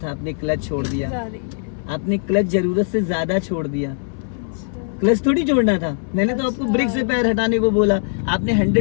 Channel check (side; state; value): right; silent; 62 dB below the other